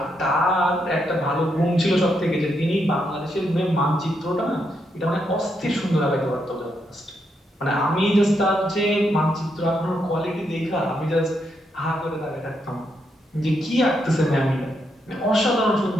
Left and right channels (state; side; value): normal; both; correlation 0.80